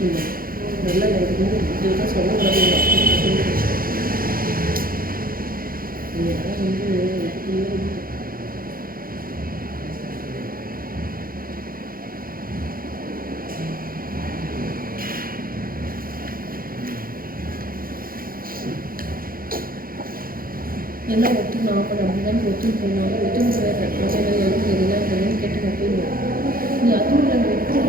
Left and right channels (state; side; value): late; left; 0.42 ms